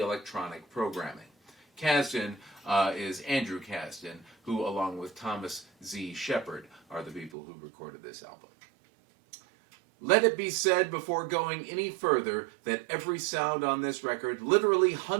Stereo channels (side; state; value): left; drops out; at 7.3 s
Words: programming. Kasdan is Andrew Kasdan, who, along with Thomas Z. Shepard, are the people who recorded this album. Let it be said before going any further that every sound on this record, literally